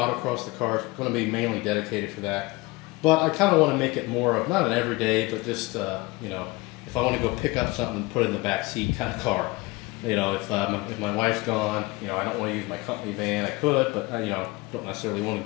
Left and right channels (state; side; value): quieter; right; 22.5 dB